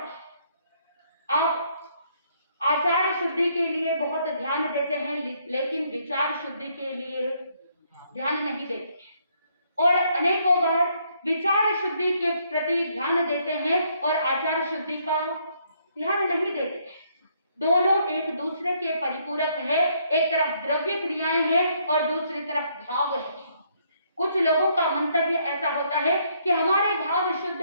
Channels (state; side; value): inverted; both; correlation -0.70